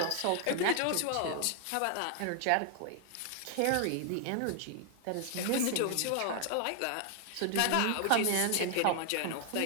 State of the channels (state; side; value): different; both; correlation 0.00